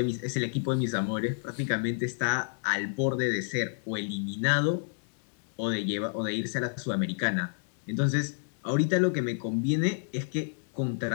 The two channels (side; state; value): right; silent; digital silence